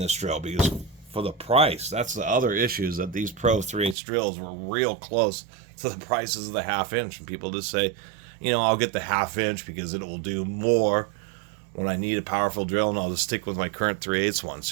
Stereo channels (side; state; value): left; drops out; at 4.0 s